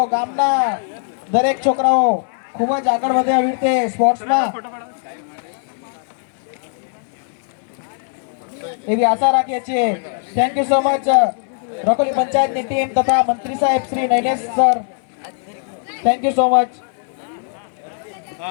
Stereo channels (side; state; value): right; silent; 66 dB below the other